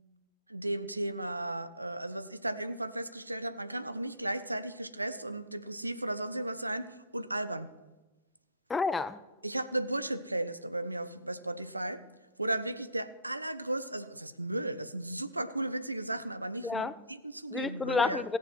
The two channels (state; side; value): inverted; both; correlation -0.43